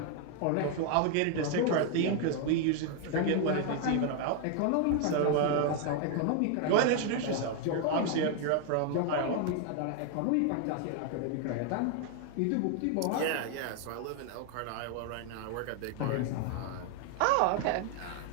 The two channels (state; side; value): different; both; correlation 0.00